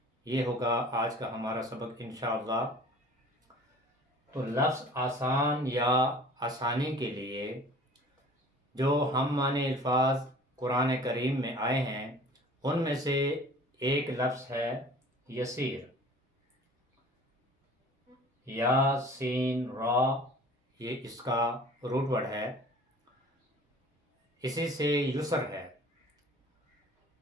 یہ ہوگا آج کا ہمارا سبق انشاءاللہ. تو لفظ آسان یا آسانی کے لیے جو ہم معنی الفاظ قرآن کریم میں آئے ہیں ان میں سے ایک لفظ ہے یسیر. یا سین را، یہ اس کا روٹ ورڈ ہے. اسی سے یسر ہے.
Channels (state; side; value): normal; both; correlation 0.46